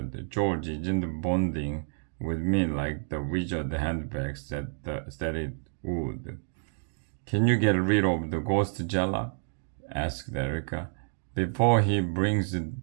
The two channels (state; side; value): silent; left; digital silence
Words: George isn't bonding with me like the wizard handbag said it would. Can you get rid of the ghost, Jellag? Asked Erica. Before he brings